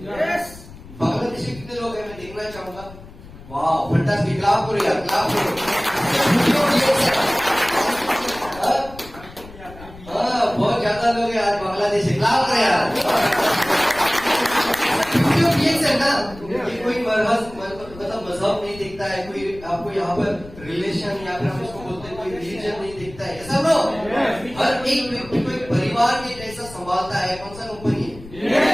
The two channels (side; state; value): left; noise; rumble, 18 dB below the sound